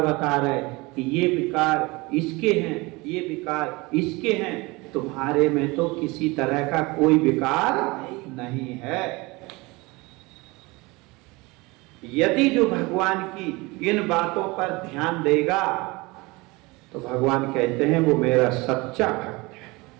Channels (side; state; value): left; quieter; 24.0 dB